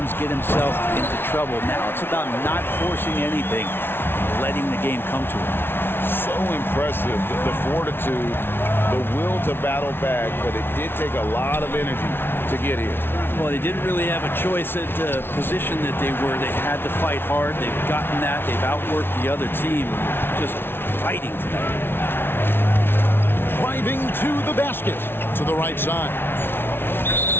get himself into trouble. Now it's about not forcing anything, letting the game come to him. So impressive, the fortitude, the will to battle back, but it did take a lot of energy to get here. Well, they didn't really have a choice at the position that they were. They had to fight hard. They've gotten that. They've outworked the other team. Just fighting tonight. Driving to the basket. To the right side.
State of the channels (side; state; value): right; late; 0.11 ms